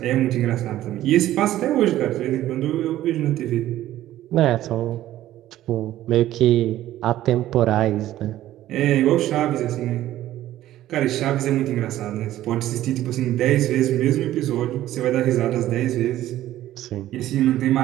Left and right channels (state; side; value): quieter; left; 13.8 dB